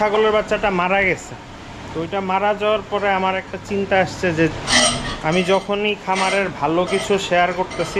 বাচ্চাটা মারা গেছে। তো ওইটা মারা যাওয়ার পরে আমার একটা চিন্তা আসছে যে আমি যখনই খামারের ভালো কিছু শেয়ার করতেছি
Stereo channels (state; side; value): identical; both; correlation 1.00